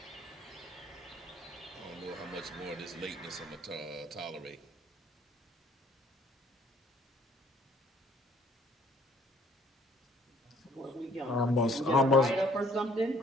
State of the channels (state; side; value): normal; both; correlation 0.60